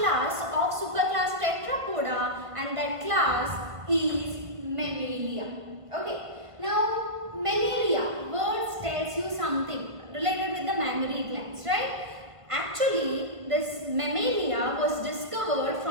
of superclass Tetrapoda, and that class is Mammalia. Okay. Now Mammalia words tells you something related with the mammary glands, right? Actually, this Mammalia was discovered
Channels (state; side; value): late; left; 1.5 ms